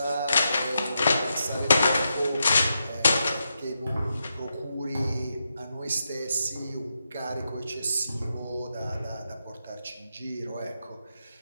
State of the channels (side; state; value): both; inverted; correlation -0.85